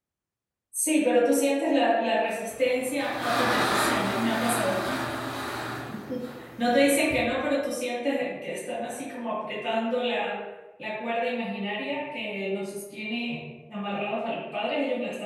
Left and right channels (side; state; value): both; identical; correlation 1.00